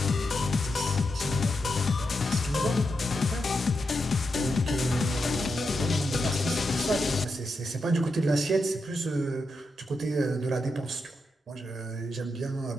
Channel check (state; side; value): normal; both; correlation 0.86